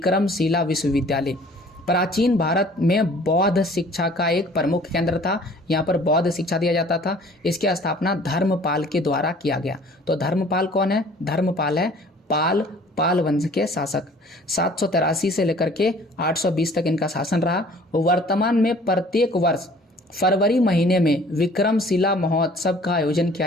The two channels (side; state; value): both; normal; correlation 0.52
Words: विश्वविद्यालय। प्राचीन भारत में बौद्ध शिक्षा का एक प्रमुख केंद्र था। यहाँ पर बौद्ध शिक्षा दिया जाता था। इसकी स्थापना धर्मपाल के द्वारा किया गया। तो धर्मपाल कौन है? धर्मपाल है पाल वंश के शासक। 783 से लेकर के 820 तक इनका शासन रहा। वर्तमान में प्रत्येक वर्ष फरवरी महीने में विक्रमशिला महोत्सव का आयोजन